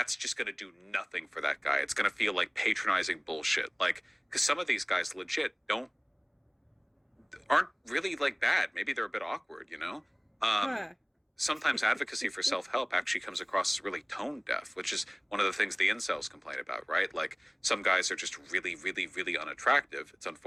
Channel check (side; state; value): both; identical; correlation 1.00